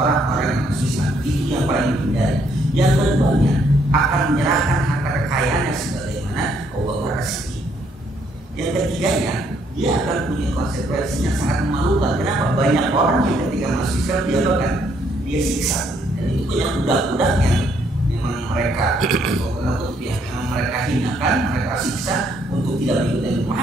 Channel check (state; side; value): normal; both; correlation 0.70